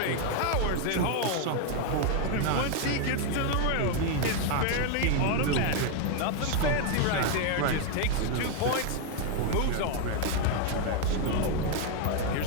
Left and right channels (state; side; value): different; both; correlation 0.01